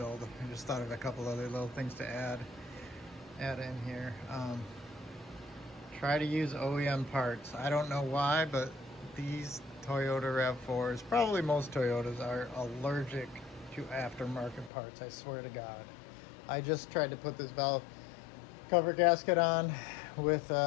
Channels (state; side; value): drops out; right; at 14.7 s